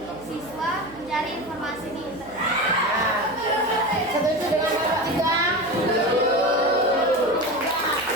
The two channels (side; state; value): right; noise; hum, 22 dB below the sound